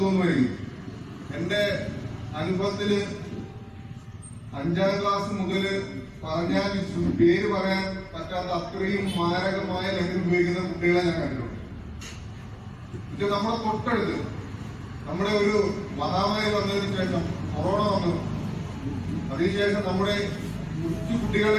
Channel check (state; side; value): identical; both; correlation 1.00